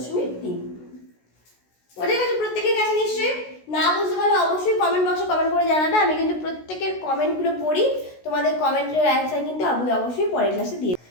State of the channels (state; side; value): late; right; 16 ms